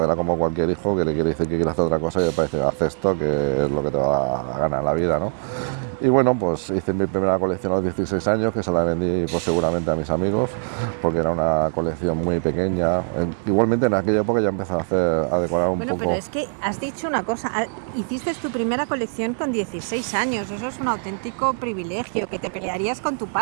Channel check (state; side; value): silent; left; digital silence